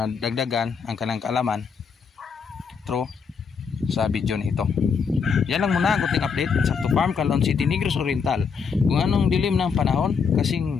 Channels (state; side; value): quieter; right; 5.9 dB